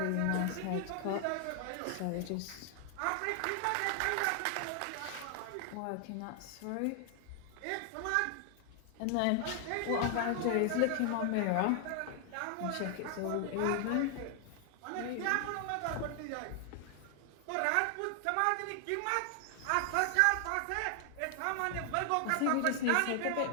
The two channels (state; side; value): different; both; correlation 0.00